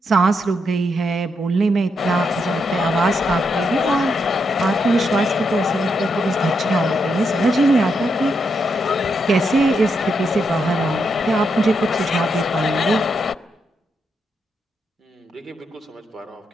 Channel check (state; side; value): normal; both; correlation 0.81